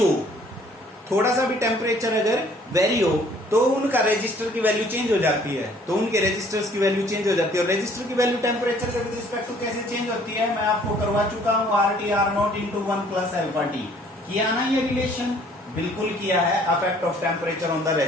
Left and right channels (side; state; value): both; normal; correlation 0.58